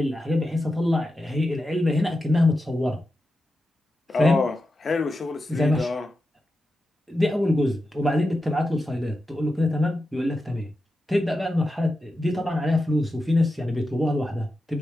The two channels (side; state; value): both; normal; correlation 0.90